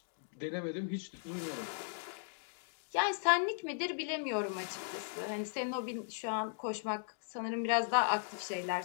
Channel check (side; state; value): right; silent; digital silence